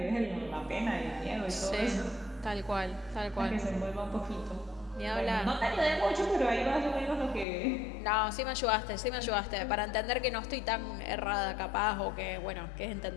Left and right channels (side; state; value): right; drops out; at 7.5 s